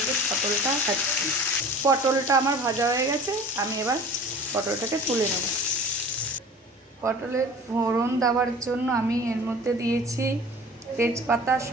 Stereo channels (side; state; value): both; normal; correlation 0.42